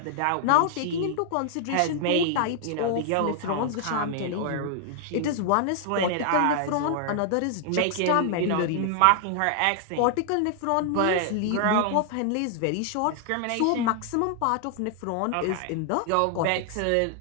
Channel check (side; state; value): both; different; correlation 0.00